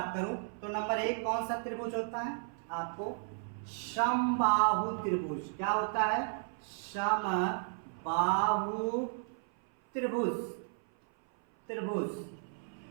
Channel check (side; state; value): left; silent; 55 dB below the other